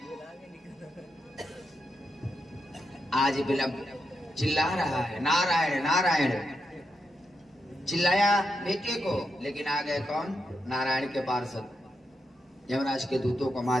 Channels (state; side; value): normal; both; correlation 0.84